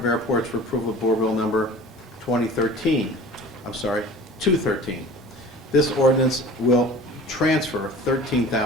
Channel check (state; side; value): normal; both; correlation 0.42